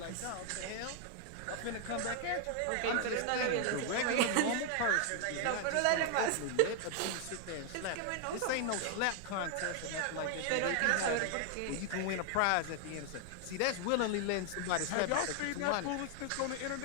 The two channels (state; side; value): different; both; correlation 0.00